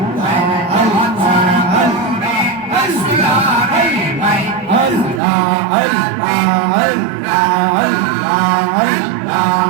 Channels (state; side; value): drops out; left; at 5.2 s